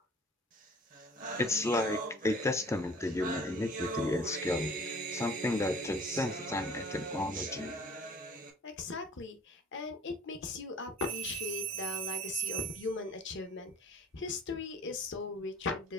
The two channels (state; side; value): normal; both; correlation 0.50